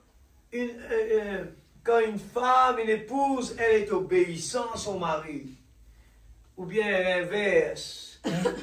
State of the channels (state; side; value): identical; both; correlation 1.00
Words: une femme, une épouse, elle est obéissante à son mari, ou bien l'inverse,